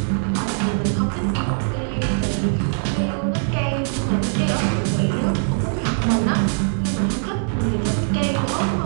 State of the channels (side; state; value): left; silent; 64 dB below the other